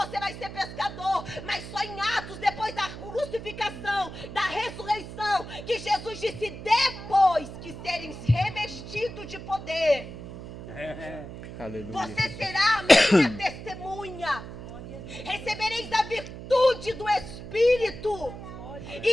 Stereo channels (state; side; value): noise; right; hum, 11 dB below the sound